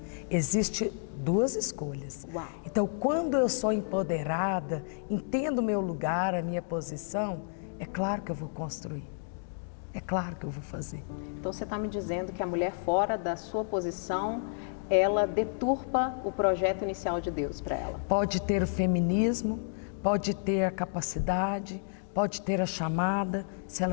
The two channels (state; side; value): silent; right; digital silence